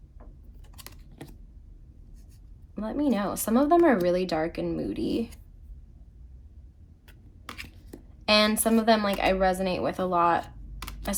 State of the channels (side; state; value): both; identical; correlation 1.00